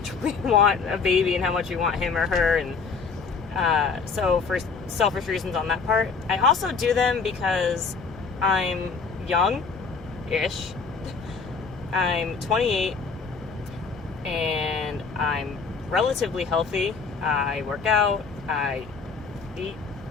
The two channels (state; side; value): quieter; right; 5.1 dB